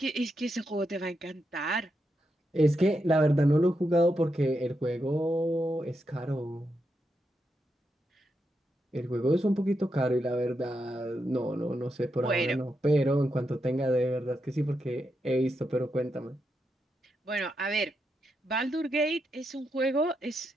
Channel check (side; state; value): both; normal; correlation 0.84